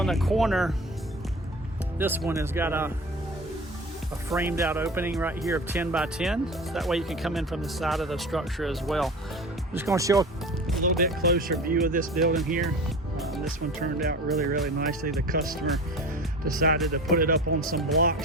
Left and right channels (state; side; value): normal; both; correlation 0.35